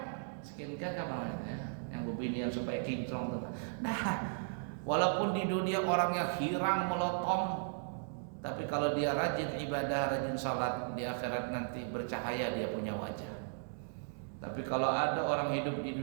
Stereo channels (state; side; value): silent; left; digital silence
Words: Skincare apa namanya? Yang begini yang supaya kinclong. Nah, walaupun di dunia orangnya hirang melotong, tapi kalau dia rajin ibadah, rajin salat, di akhirat nanti bercahaya dia punya wajah. Tapi kalau ada orang hidup di